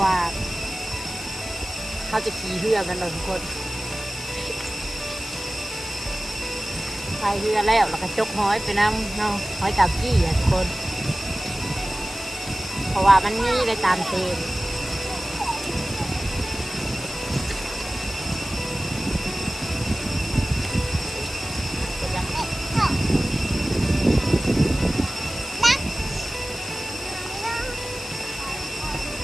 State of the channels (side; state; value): left; noise; hiss, 12 dB below the sound